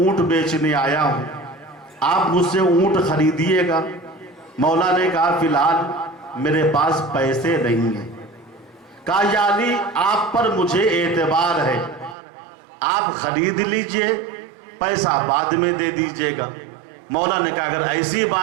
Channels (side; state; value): left; drops out; at 12.2 s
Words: بیچنے آیا ہوں، آپ مجھ سے اونٹ خریدیے گا. مولا نے کہا فی الحال میرے پاس پیسے نہیں ہیں. کہا یا علی، آپ پر مجھے اعتبار ہے، آپ خرید لیجئے، پیسہ بعد میں دے دیجئے گا. مولا نے کہا اگر ایسی